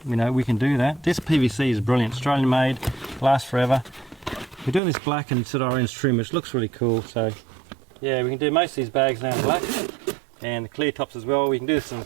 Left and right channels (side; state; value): left; drops out; at 4.8 s